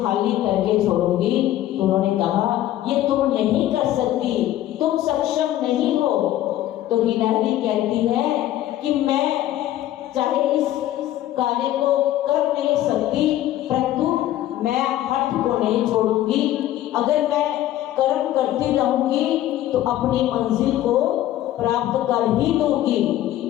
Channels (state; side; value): quieter; right; 13.5 dB